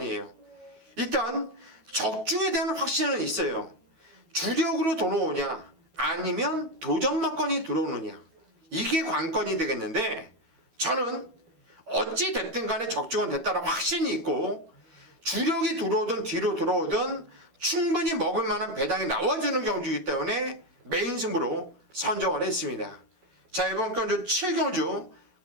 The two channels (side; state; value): left; late; 12 ms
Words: 일단 적중에 대한 확신은 있어요. 주력으로 들어오냐 아니면 도전마건이 들어오느냐, 이게 관건이 되겠는데, 저는 어찌 됐든 간에 적중은 됐다는 확신이 있고 주력이 들어오든 뒤로 들어오든 충분히 먹을 만한 배당이 나와주는 경주이기 때문에 메인 승부로 선정을 했습니다. 자, 이번 경주 7경주